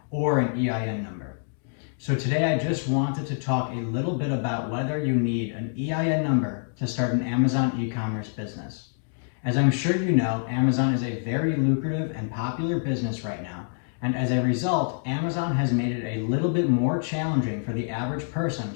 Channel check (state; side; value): silent; right; digital silence